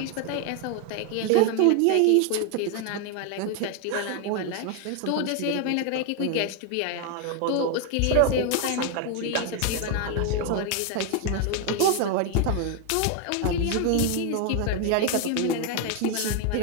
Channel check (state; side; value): different; both; correlation 0.01